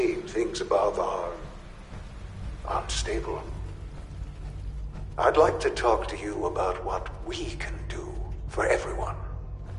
things above are unstable. I'd like to talk to you about what we can do for everyone.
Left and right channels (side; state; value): both; identical; correlation 1.00